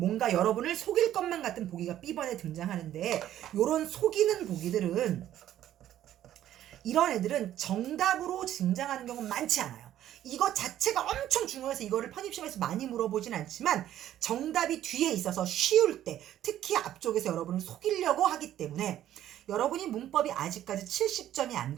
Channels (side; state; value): left; quieter; 12.1 dB